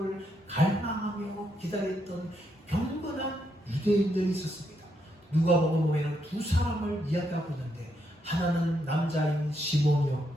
갈망하며 기다렸던 경건한 유대인들이 있었습니다. 누가복음 보면 두 사람을 이야기하고 있는데 하나는 남자인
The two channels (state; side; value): normal; both; correlation 0.78